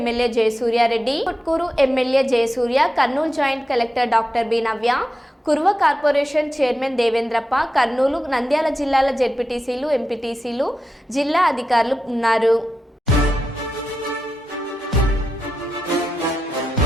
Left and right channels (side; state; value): both; normal; correlation 0.90